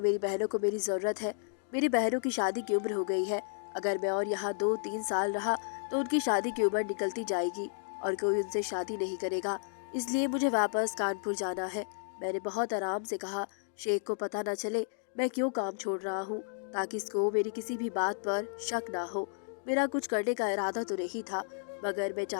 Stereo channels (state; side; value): silent; right; digital silence